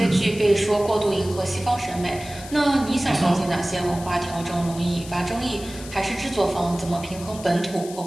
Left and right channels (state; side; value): noise; left; hiss, 15 dB below the sound